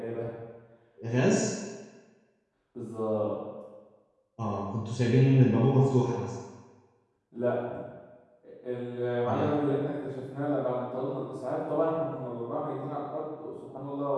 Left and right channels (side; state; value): both; identical; correlation 1.00